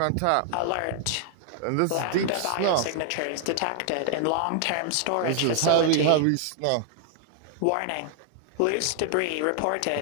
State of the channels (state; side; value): different; both; correlation 0.00